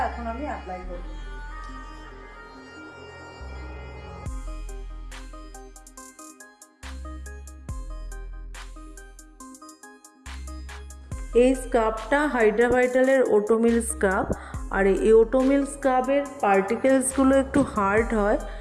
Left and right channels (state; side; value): identical; both; correlation 1.00